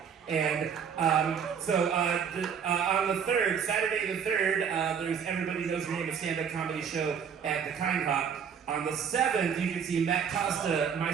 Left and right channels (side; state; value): left; quieter; 7.2 dB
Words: And on the 3rd, Saturday the 3rd, there's Everybody Knows Your Name, a stand-up comedy show at the Kind Hop. On the 7th, you can see Matt Costa,